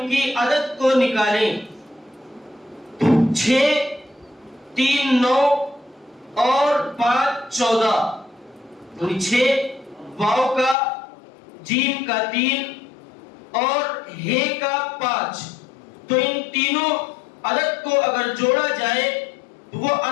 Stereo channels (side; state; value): right; drops out; at 10.8 s